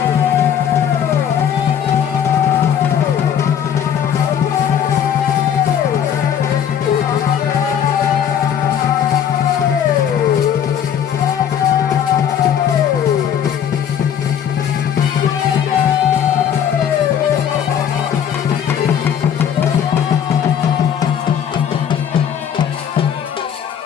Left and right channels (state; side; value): quieter; right; 8.8 dB